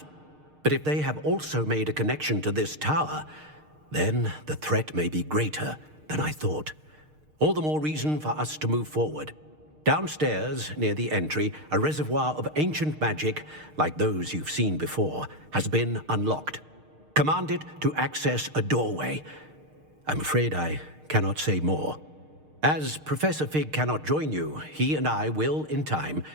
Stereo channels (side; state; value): left; late; 6.5 ms